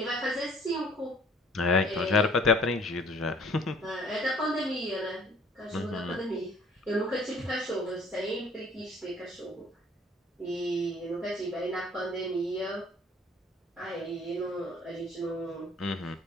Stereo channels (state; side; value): normal; both; correlation 0.55